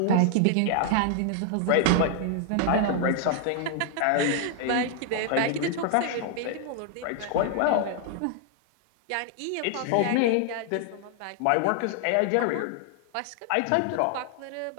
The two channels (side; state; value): both; different; correlation 0.00